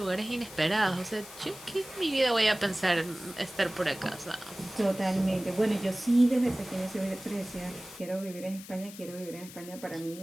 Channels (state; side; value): noise; left; hiss, 16 dB below the sound